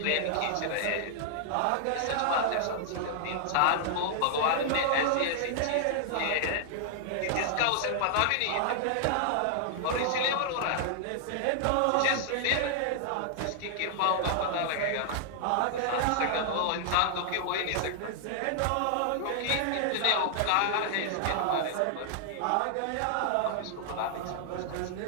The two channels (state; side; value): different; both; correlation -0.01